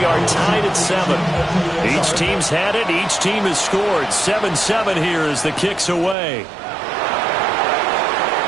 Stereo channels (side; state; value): left; drops out; at 6.2 s